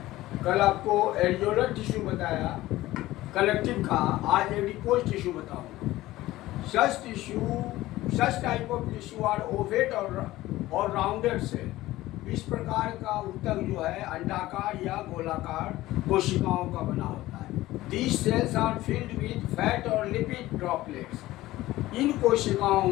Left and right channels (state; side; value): quieter; right; 16.8 dB